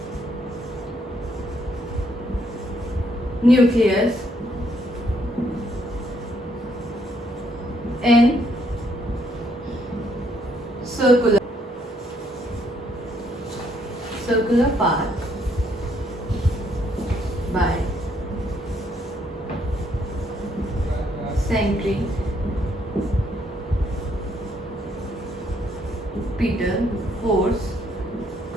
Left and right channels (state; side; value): normal; both; correlation 0.70